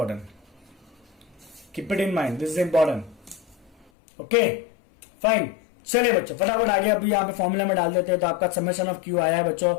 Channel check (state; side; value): drops out; right; at 3.9 s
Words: keep it in mind, this is important. Okay fine, चलिए बच्चों फटाफट आगे अभी यहाँ पे फॉर्मूला में डाल देते हैं। तो आपका समेशन ऑफ क्यू आया है बच्चों